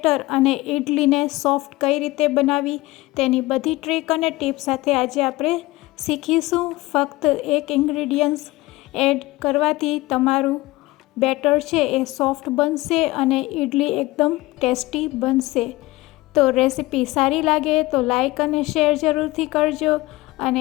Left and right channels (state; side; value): quieter; right; 19.7 dB